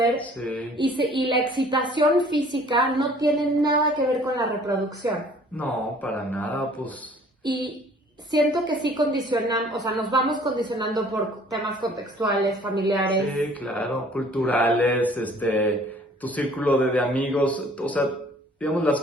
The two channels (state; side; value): normal; both; correlation 0.54